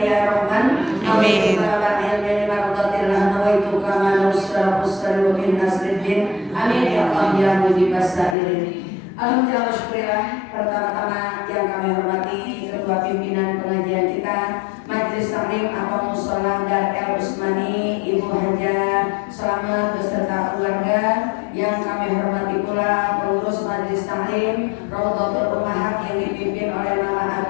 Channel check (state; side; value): drops out; right; at 8.3 s